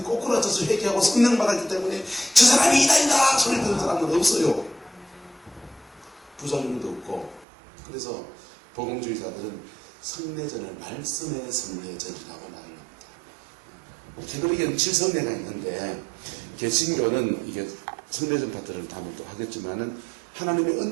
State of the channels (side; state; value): left; drops out; at 7.5 s